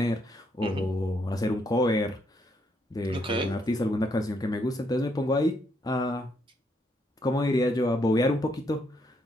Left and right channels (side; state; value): both; normal; correlation 0.74